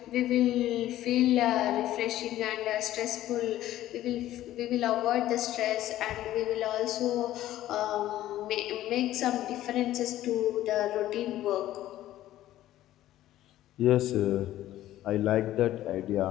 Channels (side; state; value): right; quieter; 13.9 dB